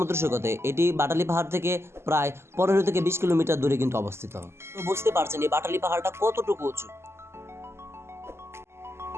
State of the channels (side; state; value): left; late; 0.12 ms